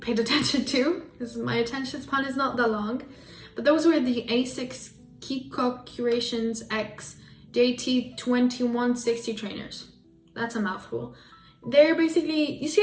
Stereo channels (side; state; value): both; identical; correlation 1.00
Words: paid attention to because my attention span is not that long. But those were the Asics Kiko Curations X JT2160 trainers. That's a mouthful. They're basically, you see